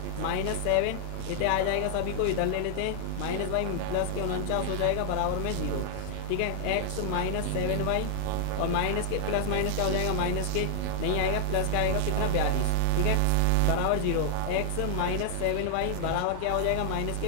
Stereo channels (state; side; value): different; both; correlation -0.01